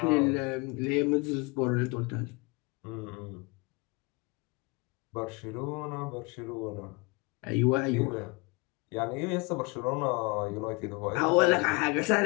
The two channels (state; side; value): quieter; right; 28.7 dB